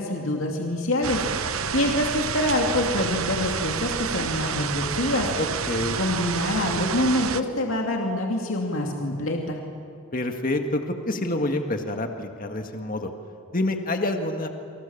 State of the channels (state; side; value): normal; both; correlation 0.24